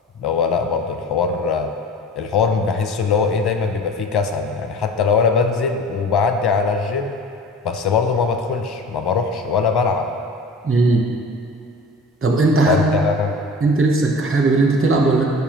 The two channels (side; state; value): both; normal; correlation 0.40